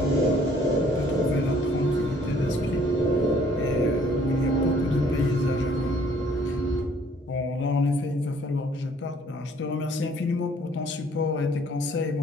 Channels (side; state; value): both; normal; correlation 0.60